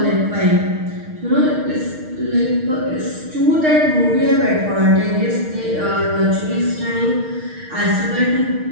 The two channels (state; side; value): late; left; 6.5 ms